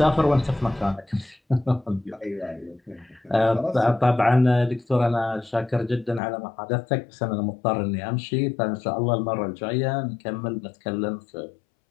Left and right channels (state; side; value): drops out; right; at 6.2 s